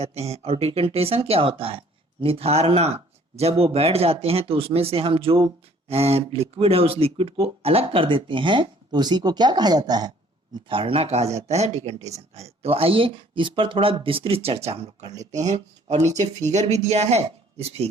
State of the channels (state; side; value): normal; both; correlation 0.57